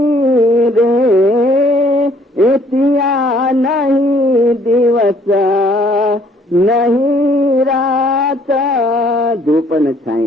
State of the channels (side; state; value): both; normal; correlation 0.62